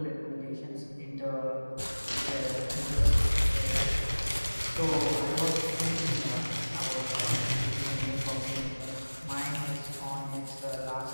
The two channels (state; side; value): inverted; both; correlation -1.00